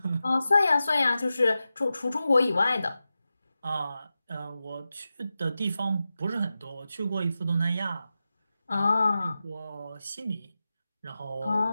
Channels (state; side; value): inverted; both; correlation -0.93